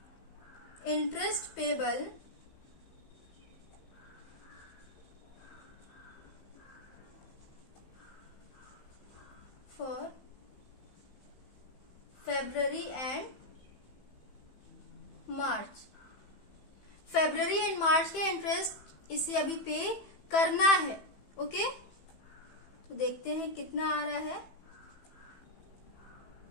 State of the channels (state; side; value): late; right; 15 ms